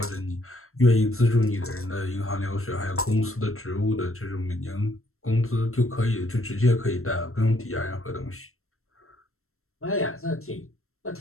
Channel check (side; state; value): right; late; 0.62 ms